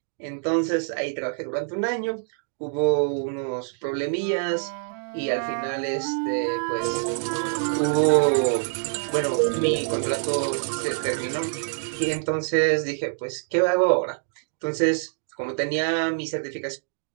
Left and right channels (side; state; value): left; silent; 60 dB below the other